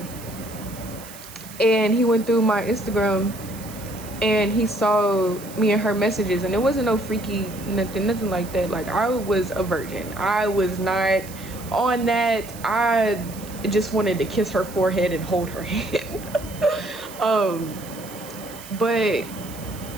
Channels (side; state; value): right; noise; hiss, 16 dB below the sound